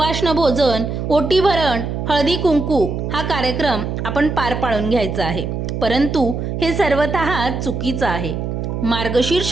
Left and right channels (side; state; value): right; noise; hum, 4 dB below the sound